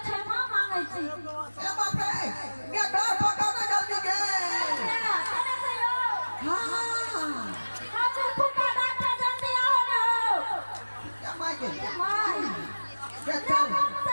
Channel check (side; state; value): both; inverted; correlation -1.00